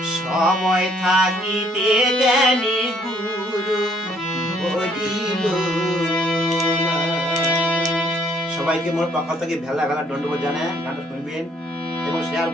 সময় থাকিতে কেনে গুরু বলিল না। সবাইকে মোর পক্ষ থেকে ভেলা ভেলা দণ্ডবোধ জানায় গানটা শুনবেন এবং শেয়ার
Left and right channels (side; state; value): both; normal; correlation 0.64